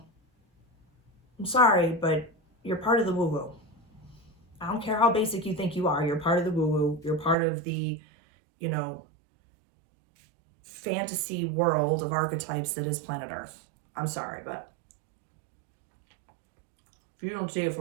I'm sorry, but you're part of the woo-woo. I don't care how basic you think you are. You're part of the woo-woo. You're part of the, fantasy world of archetypes that is planet Earth. I'm sorry, but if you don't see it for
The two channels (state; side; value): drops out; left; at 7.4 s